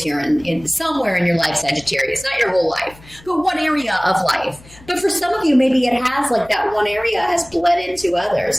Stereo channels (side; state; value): left; noise; hum, 23 dB below the sound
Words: here in somewhere in your life, Sagittarius. Not your whole life, but one area of life. But for some of you, maybe it has, that one area has bled into others